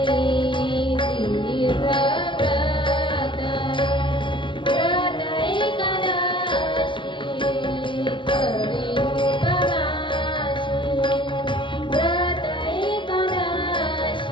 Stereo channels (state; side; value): late; right; 0.24 ms